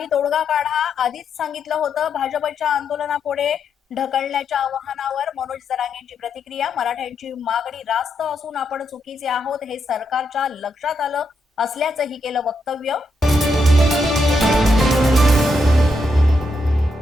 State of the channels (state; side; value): normal; both; correlation 0.81